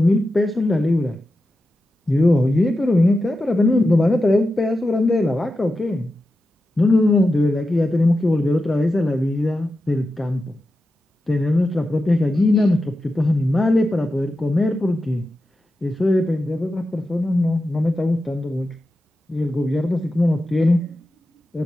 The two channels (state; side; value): normal; both; correlation 0.91